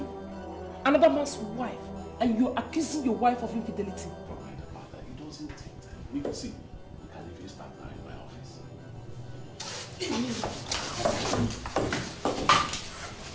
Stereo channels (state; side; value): identical; both; correlation 1.00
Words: another man's wife, and you're accusing your wife of infidelity. Don't mind about that. It doesn't take time. We can see. We can even start now in my office.